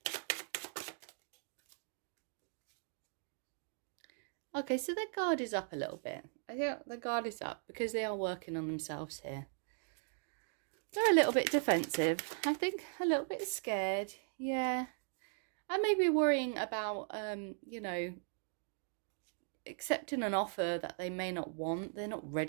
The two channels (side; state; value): left; silent; 52 dB below the other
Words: Okay, so their guard is up a little bit. I think the guard is up because they are working on themselves here. They're a little bit defensive. I think a little bit scared. Yeah. And maybe worrying about, you know, accepting an offer that they may not want. They're not